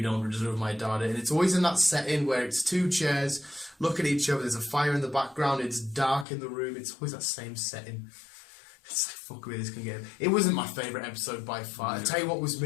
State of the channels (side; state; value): right; drops out; at 6.2 s